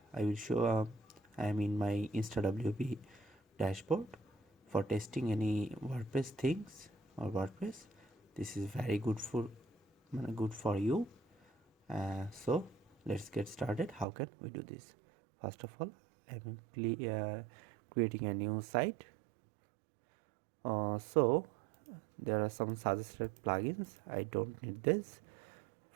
I will show I am in my InstaWP dashboard for testing any WordPress things or WordPress. This is very good for you. So let's get started. How can we do this? First of all, I'm creating a new site. So there are some suggested plugins. I don't need this.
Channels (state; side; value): drops out; left; at 14.1 s